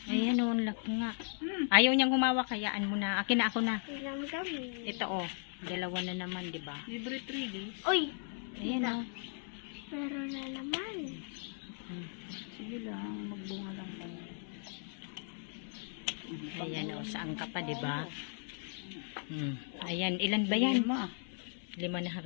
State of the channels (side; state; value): right; silent; 53 dB below the other